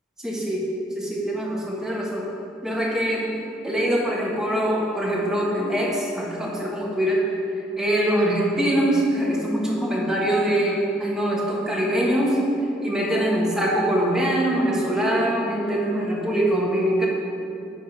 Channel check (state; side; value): normal; both; correlation 0.66